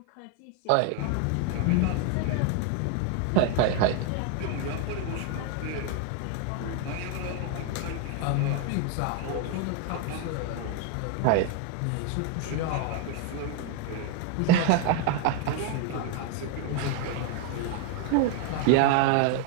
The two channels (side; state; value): both; different; correlation 0.01